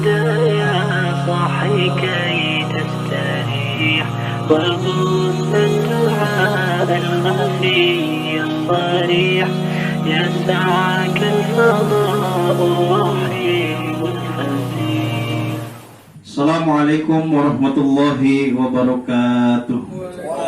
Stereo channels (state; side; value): identical; both; correlation 1.00